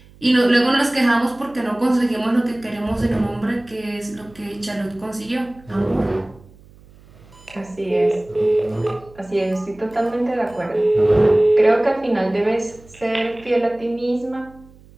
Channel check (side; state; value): right; noise; hum, 25 dB below the sound